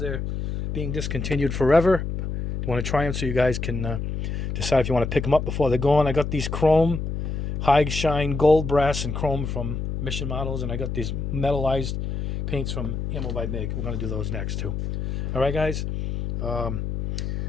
being discontinued forever. You want to try them so you guys can decide if you want to pick them up before they're gone. I got these chrome, high shine gold, brass, and chrome from Mission Models, and I got these metallized paints from Ammo by MIG. We're going to do those next too. All right, guys.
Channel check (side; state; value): left; noise; hum, 3 dB below the sound